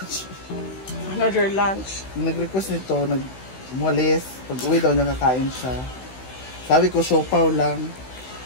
Another lunch. Nag-request nito, nag-mualis. Pag uwi daw niya kakain siya. Sabi ko, siopaw lang.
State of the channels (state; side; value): late; right; 16 ms